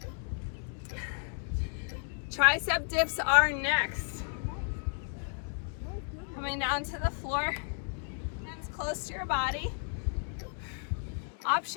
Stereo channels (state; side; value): silent; right; 56 dB below the other